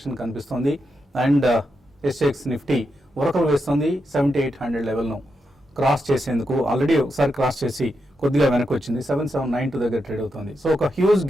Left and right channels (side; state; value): both; normal; correlation 0.85